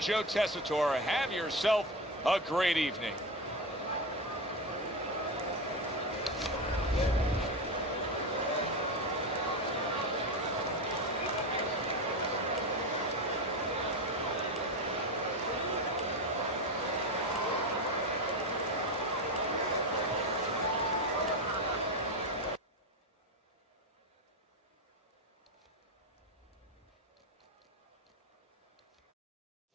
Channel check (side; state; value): both; normal; correlation 0.18